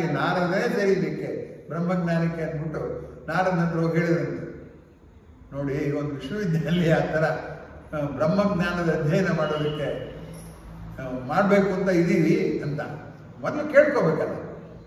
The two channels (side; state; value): both; identical; correlation 1.00